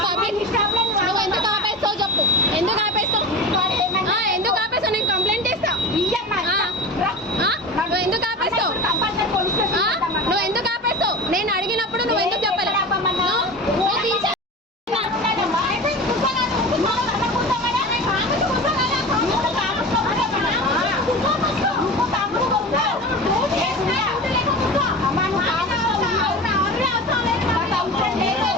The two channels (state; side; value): normal; both; correlation 0.31